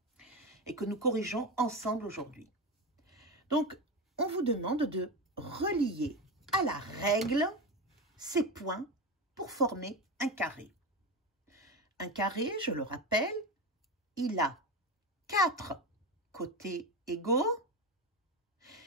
et que nous corrigeons ensemble aujourd'hui. Donc, on vous demande de relier à la règle ces points pour former un carré. Un carré, je le rappelle, il a 4 côtés égaux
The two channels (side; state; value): both; normal; correlation 0.20